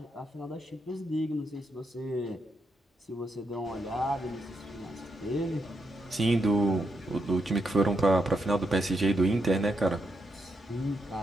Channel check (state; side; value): normal; both; correlation 0.81